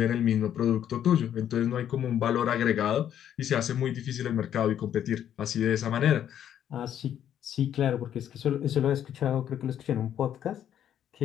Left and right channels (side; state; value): right; quieter; 10.1 dB